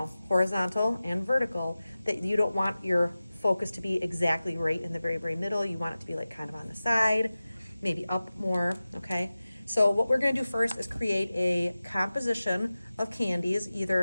horizontal and vertical, that you don't want your focus to be exactly right in the very, very middle. You want it to be like kind of on the side, maybe up more, okay? So what we're gonna do first is create a composition of candies.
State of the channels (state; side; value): inverted; both; correlation -0.96